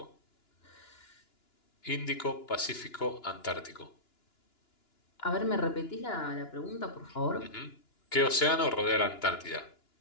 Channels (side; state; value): right; late; 2.9 ms